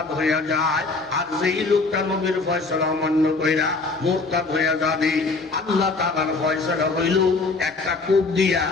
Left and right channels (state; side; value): quieter; right; 3.8 dB